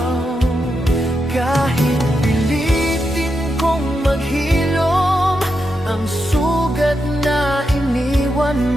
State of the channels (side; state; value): both; normal; correlation 0.85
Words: Kahit pilitin kong maghilom ang sugat na iniwan